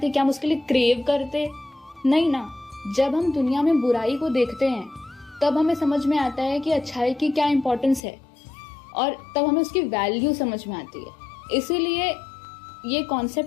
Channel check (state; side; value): drops out; right; at 8.0 s